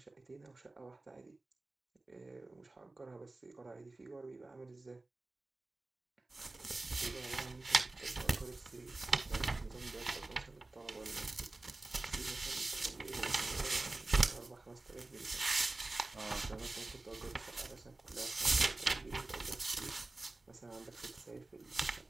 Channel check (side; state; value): left; quieter; 3.0 dB